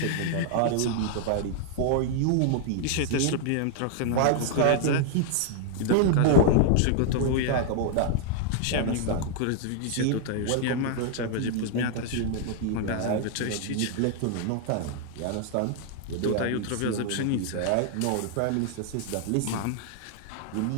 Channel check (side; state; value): both; different; correlation 0.00